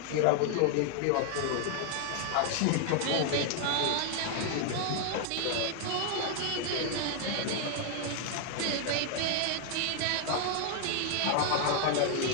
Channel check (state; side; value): different; both; correlation 0.00